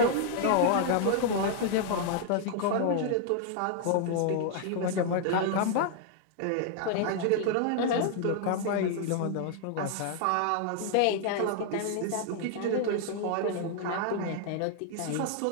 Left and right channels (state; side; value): different; both; correlation 0.00